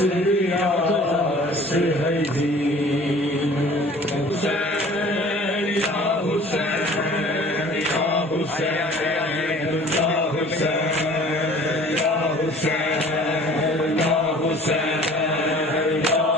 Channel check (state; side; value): normal; both; correlation 0.48